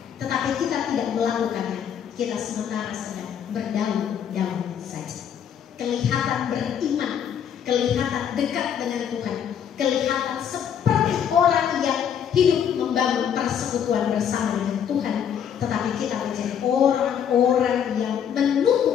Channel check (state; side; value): quieter; right; 8.5 dB